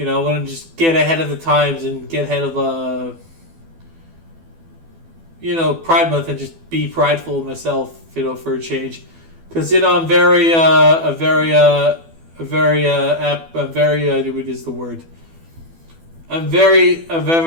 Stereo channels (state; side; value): late; left; 12 ms